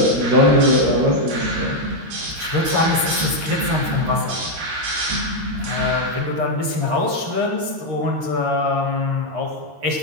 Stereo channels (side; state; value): left; late; 13 ms